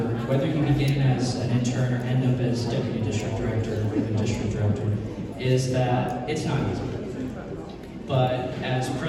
whether you begin as an intern or end up as deputy district director or even district director, is that it's not easy. But as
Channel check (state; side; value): identical; both; correlation 1.00